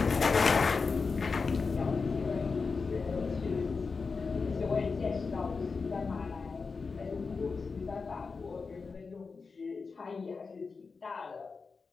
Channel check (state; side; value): quieter; right; 4.7 dB